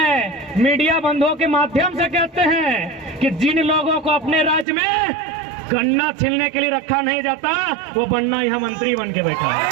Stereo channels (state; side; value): drops out; left; at 4.7 s